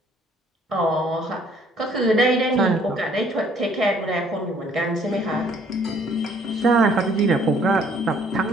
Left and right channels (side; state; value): both; normal; correlation 0.61